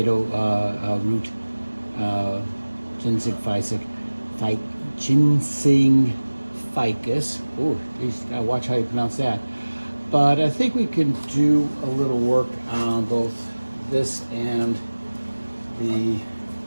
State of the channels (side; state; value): both; inverted; correlation -1.00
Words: root ginseng ficus. Oh, gotta watch how you pronounce that. But I think we can do a little work on both this and the